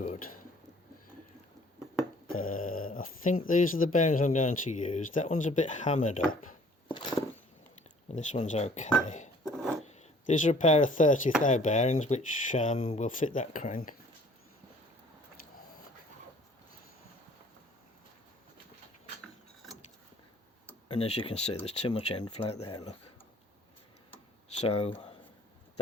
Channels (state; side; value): normal; both; correlation 0.55